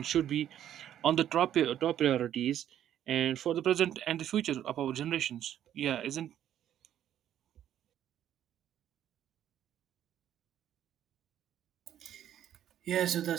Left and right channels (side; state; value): left; quieter; 11.0 dB